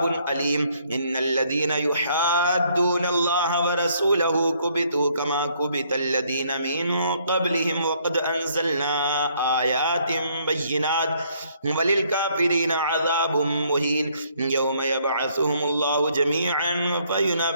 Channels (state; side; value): inverted; both; correlation -0.67